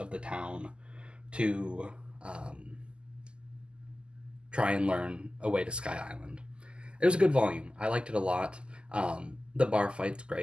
the town to try and learn a way to Sky Island. It was a good volume. I liked it a lot. The bar fight's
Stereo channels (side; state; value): left; late; 0.050 ms